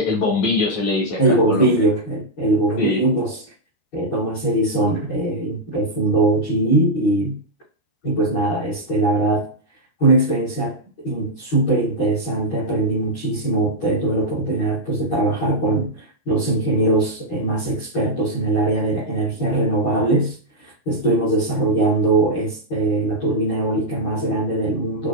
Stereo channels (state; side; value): late; right; 13 ms